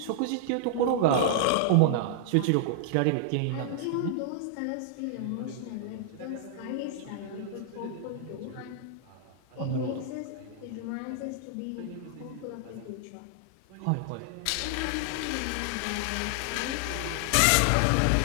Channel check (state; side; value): different; both; correlation -0.01